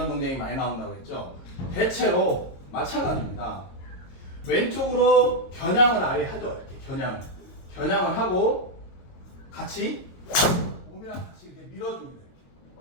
동작이 많이 나온다고 했죠. 대체로 마찬가지입니다. 왼쪽으로 겨냥을 아예 하죠. 이렇게 겨냥을 하고 같이 몸이랑 같이 이렇게 밀어줍니다.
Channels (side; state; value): right; late; 22 ms